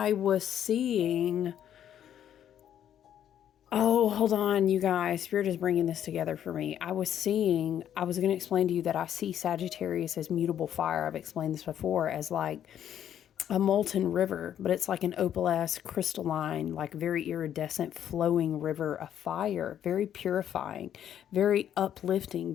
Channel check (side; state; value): right; quieter; 10.1 dB